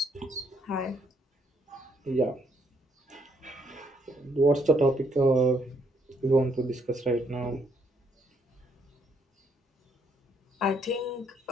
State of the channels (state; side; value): normal; both; correlation 0.71